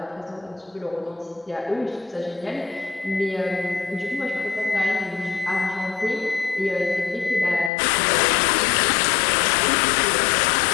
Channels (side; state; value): right; drops out; at 7.7 s